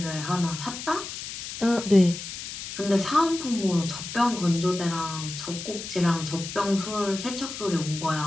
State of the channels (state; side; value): noise; left; hiss, 9 dB below the sound